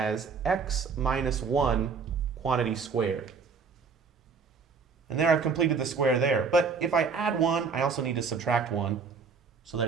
x minus 1 quantity squared. And there I've completed the square there. But if I add 1, I also need to subtract 1 so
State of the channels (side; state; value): left; quieter; 5.4 dB